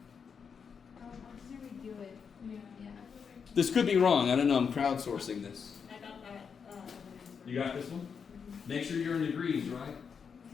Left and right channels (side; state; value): right; quieter; 6.4 dB